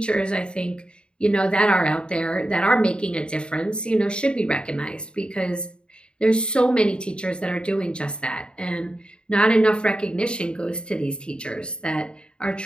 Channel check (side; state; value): right; late; 0.052 ms